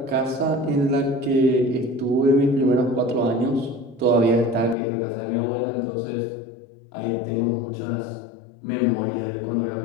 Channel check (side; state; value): right; drops out; at 4.8 s